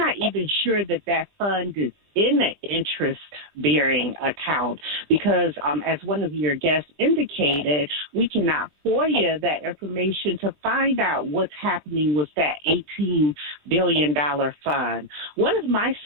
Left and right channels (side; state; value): left; late; 23 ms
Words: even sure that fund is in an interest-bearing account because, as one of your guests indicated, we cannot FOIA that information to find out what's happening with that $18 billion fund. One of my